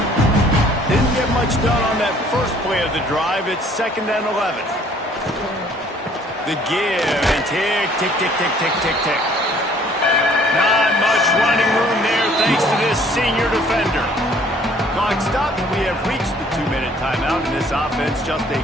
Didn't get much done on that first play of the drive. It's 2nd and 11. The give and tick, tick, tick, tick, tick, tick, tick. Not much running room there thanks to this senior defender. Clock stopped. We have reached the 2-minute timeout, and this offense just a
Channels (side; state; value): both; normal; correlation 0.58